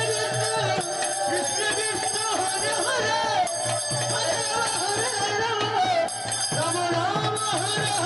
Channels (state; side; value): identical; both; correlation 1.00